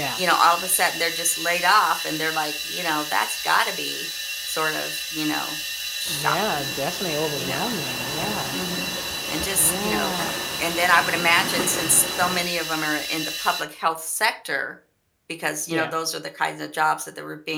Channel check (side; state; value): both; identical; correlation 1.00